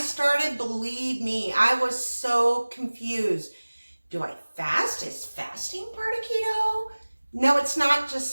believe me, I was so confused. Do I fast? Is fasting part of keto? No, it's not, just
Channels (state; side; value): inverted; both; correlation -1.00